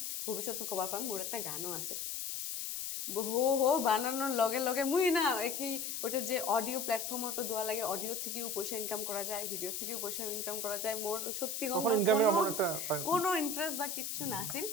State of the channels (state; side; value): noise; left; hiss, 4 dB below the sound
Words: ভবিষ্যতে কবার পাম মোর একটা গানও আছে হো বানানোর লগে লগে মুই না কি ওটা যে অডিও প্ল্যাটফর্ম তো দেওয়া লাগে অডিও থেকেও পয়সা ইনকাম করা যায় ভিডিও থেকেও পয়সা ইনকাম করা যায় মোর সত্যি কোনো ইন্টারেস্ট বা কিচ্ছু না আছিল